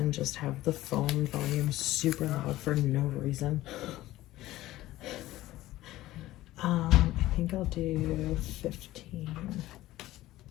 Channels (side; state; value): right; quieter; 16.1 dB